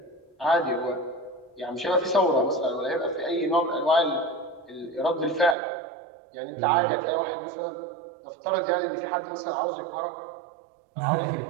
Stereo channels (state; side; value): drops out; left; at 5.6 s